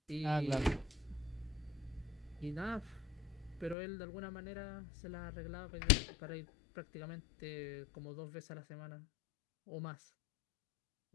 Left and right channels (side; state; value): right; drops out; at 3.8 s